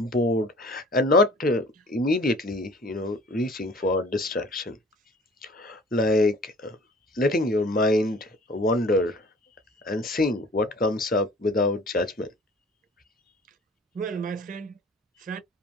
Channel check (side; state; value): both; normal; correlation 0.49